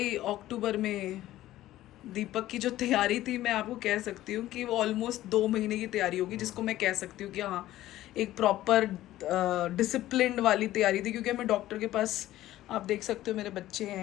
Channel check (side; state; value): right; quieter; 14.7 dB